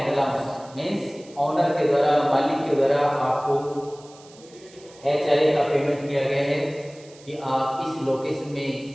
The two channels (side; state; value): right; noise; hiss, 24 dB below the sound